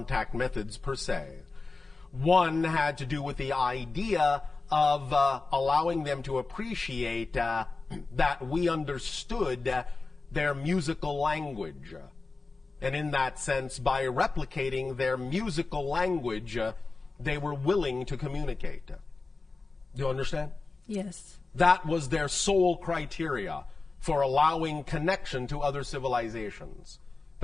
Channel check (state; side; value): quieter; right; 3.8 dB